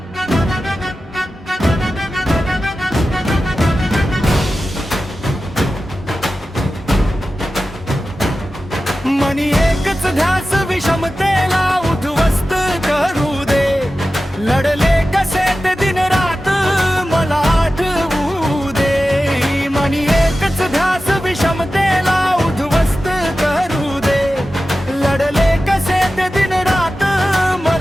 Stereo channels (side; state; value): both; normal; correlation 0.94